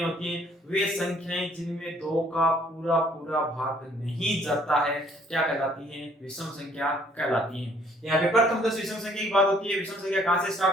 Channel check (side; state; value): both; normal; correlation 0.61